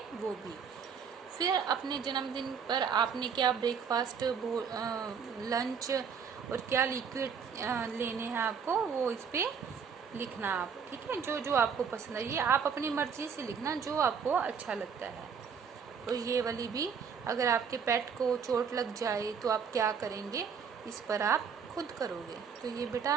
वो भी। फिर अपने जन्मदिन पर आपने क्या ब्रेकफास्ट, लंच और क्या लिक्विड लेने हैं आपको, वो इस पे लिखना आप। ठीक है, जो जो आपको पसंद है, ये आप अपनी मर्जी से लिखना जो आपको अच्छा लगता है। और ये वाली भी, अगर आपके पेट को चोट लग जाए तो आप क्या करेंगे, इस पर आप खुद करोगे। तो ये बेटा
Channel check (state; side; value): quieter; left; 6.6 dB